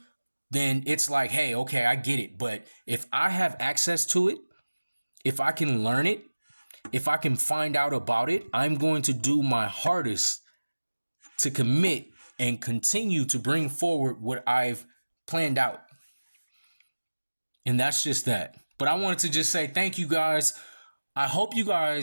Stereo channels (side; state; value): both; inverted; correlation -1.00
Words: then it's like, hey, okay, I get it. But if I have access to it, if I can learn it, if I can find out about it, I'm going to do my hardest to commit and continue to bring forward what I've planned out. And that's just that. But I wanted to just say thank you guys. I hope you